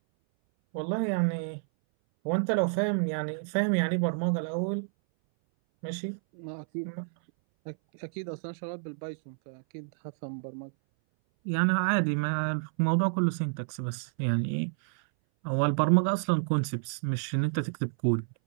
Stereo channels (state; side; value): silent; left; 58 dB below the other